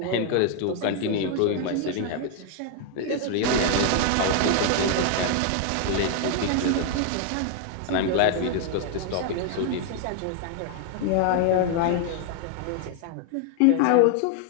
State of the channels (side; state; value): both; different; correlation 0.00